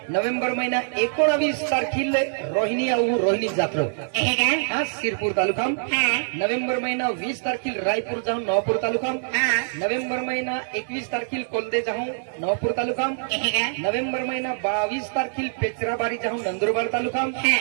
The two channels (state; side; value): silent; left; digital silence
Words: नोव्हेंबर महिना 19 तारखेला रोहिणी जात्रा हा सिरपूर तालुका नोव्हेंबर महिना 20 तारखेला रायपूर जाऊन नवापूर तालुका नोव्हेंबर महिना 21 तारखेला कोलदे जाऊन नवापूर तालुका नोव्हेंबर महिना 22 तारखेला पेचराबारी जाऊन नंदुरबार तालुका